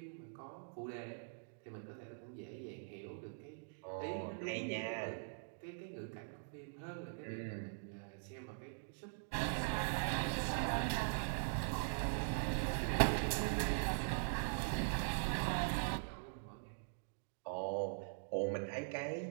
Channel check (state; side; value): silent; left; digital silence